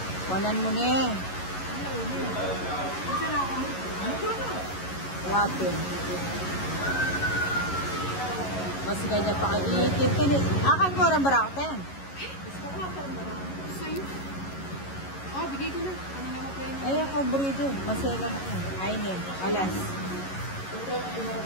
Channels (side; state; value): right; late; 11 ms